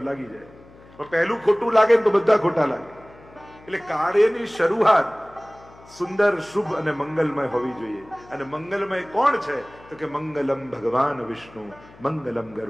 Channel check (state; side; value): noise; left; hum, 24 dB below the sound